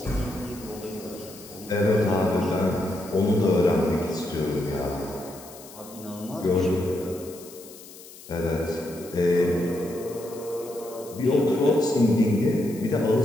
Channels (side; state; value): left; noise; hiss, 18 dB below the sound